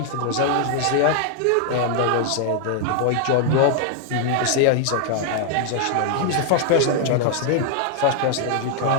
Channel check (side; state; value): both; different; correlation 0.00